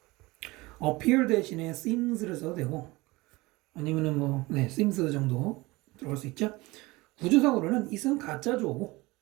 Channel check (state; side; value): quieter; left; 21.9 dB